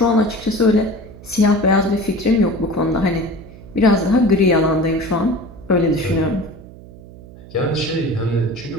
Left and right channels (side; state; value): right; noise; hum, 19 dB below the sound